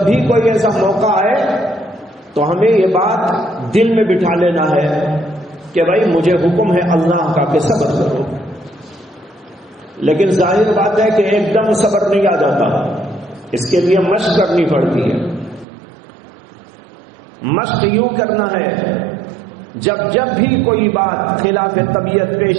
بھی کوئی ایسا موقع آئے تو ہمیں یہ بات دل میں بٹھا لینا ہے کہ بھائی مجھے حکم ہے اللہ کا کہ صبر کرو، لیکن ظاہر بات ہے کہ ایک دم صبر نہیں آ جاتا، اس کے لیے مشق کرنی پڑتی ہے۔ مشق یوں کرنا ہے جب بھی کوئی بات خلاف طبیعت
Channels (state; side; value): drops out; left; at 15.7 s